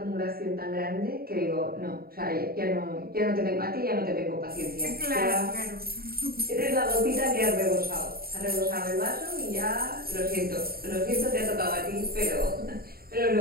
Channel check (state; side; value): late; left; 0.44 ms